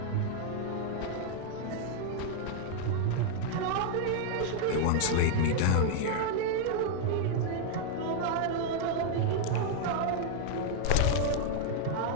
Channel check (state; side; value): different; both; correlation 0.00